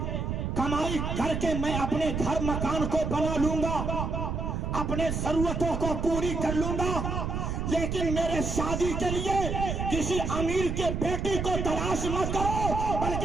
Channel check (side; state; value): right; noise; rumble, 2 dB below the sound